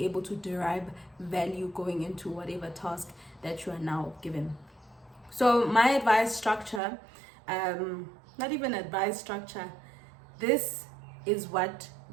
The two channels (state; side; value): drops out; left; at 6.8 s